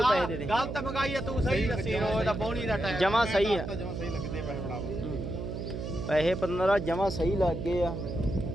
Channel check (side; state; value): right; noise; hum, 5 dB below the sound